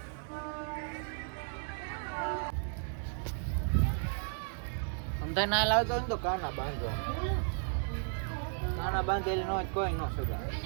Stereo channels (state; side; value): silent; left; 55 dB below the other